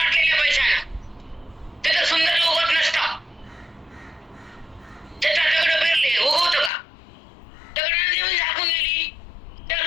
पैशानं ते तर सुंदर उगवत नसतं. त्याचा दगड पेरले उगवतं का? दगडाने जेवण झाकून गेली, त्या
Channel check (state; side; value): drops out; right; at 6.7 s